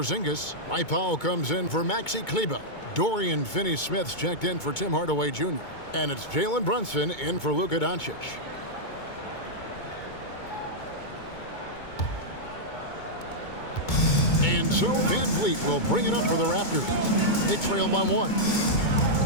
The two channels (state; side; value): late; right; 2.2 ms